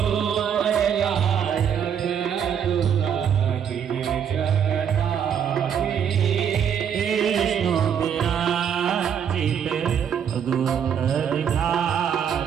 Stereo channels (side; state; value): left; quieter; 8.2 dB